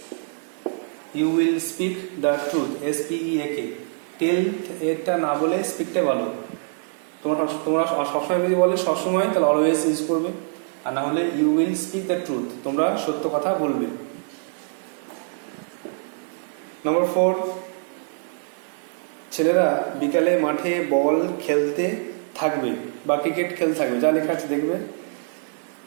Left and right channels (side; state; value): left; silent; 62 dB below the other